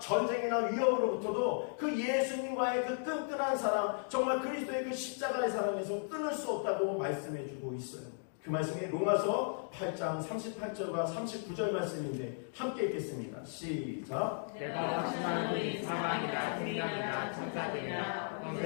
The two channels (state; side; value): silent; right; digital silence